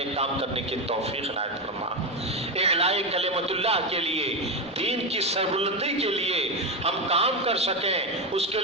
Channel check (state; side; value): normal; both; correlation 0.13